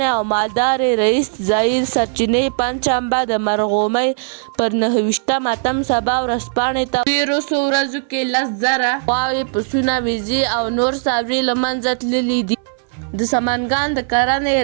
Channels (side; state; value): left; silent; 59 dB below the other